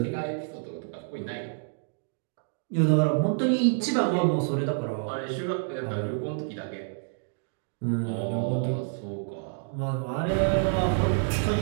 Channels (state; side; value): silent; left; digital silence